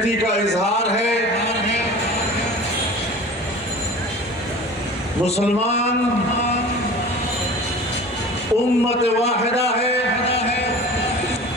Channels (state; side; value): normal; both; correlation 0.39